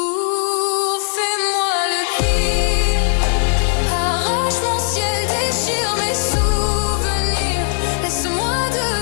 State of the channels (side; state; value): right; silent; 62 dB below the other